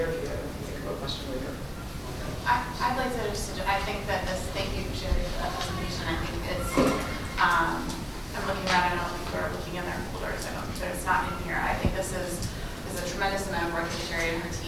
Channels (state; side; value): identical; both; correlation 1.00